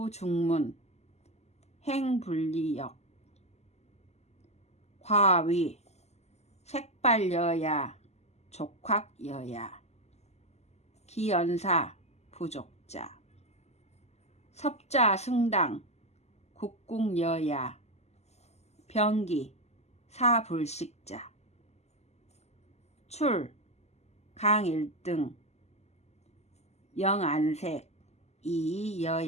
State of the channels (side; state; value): right; late; 0.32 ms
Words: 행불리역 과위 색발여야 족확여야 기연사 부족자 섭자 승당 국궁여야 병기 사불식자 출 강일등 영안색